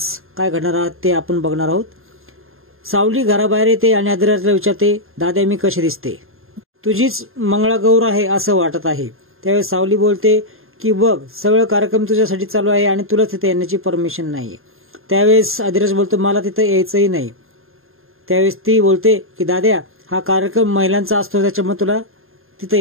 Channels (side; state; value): left; late; 0.61 ms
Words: काय घडणार आहे ते आपण बघणार आहोत। सावली घराबाहेर येते आणि आदिराजला विचारते, दादा मी कशी दिसते? तुझीच मंगळागौर आहे असं वाटत आहे। त्यावेळेस सावली बोलते की बघ, सगळं कार्यक्रम तुझ्यासाठी चालू आहे आणि तुला तिथे येण्याची परमिशन नाहीये। त्यावेळेस आदिराज बोलतो, मला तिथे यायचंही नाही। त्यावेळेस ती बोलते की दाद्या, हा कार्यक्रम महिलांचा असतो, त्याच्यामुळे तुला